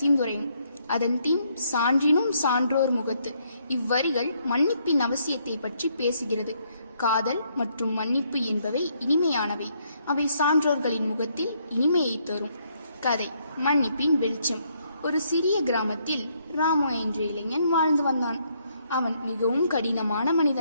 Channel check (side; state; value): both; inverted; correlation -0.72